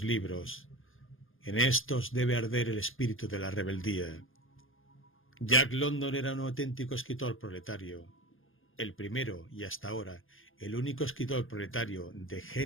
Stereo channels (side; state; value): right; late; 0.59 ms